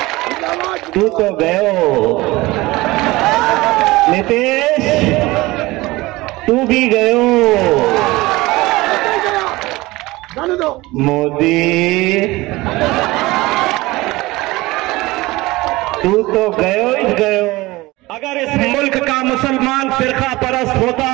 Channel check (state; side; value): quieter; left; 20.4 dB